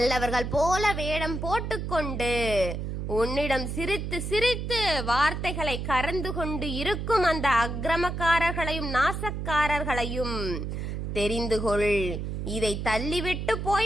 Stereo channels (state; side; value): noise; right; hum, 4 dB below the sound